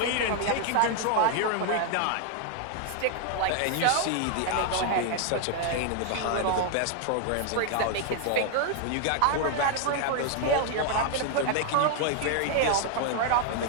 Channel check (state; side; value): different; both; correlation 0.00